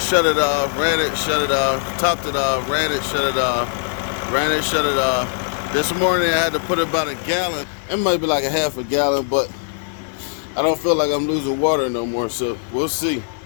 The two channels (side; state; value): right; silent; digital silence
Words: shut it off, ran it, shut it off, topped it off, ran it, shut it off, ran it, shut it off. This morning I had to put about a gallon. It might be like a half a gallon, but I don't feel like I'm losing water no more, so we'll see.